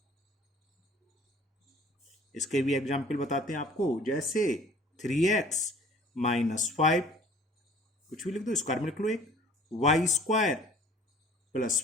इसके भी एग्जाम्पल बताते हैं आपको, जैसे 3x -5, कुछ भी लिख दो, स्क्वायर में लिख लो एक, y²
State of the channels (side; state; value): both; normal; correlation 0.51